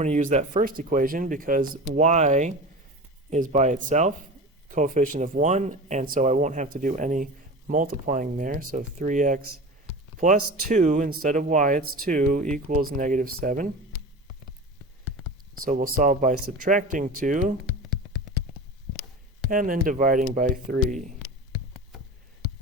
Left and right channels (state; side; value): normal; both; correlation 0.31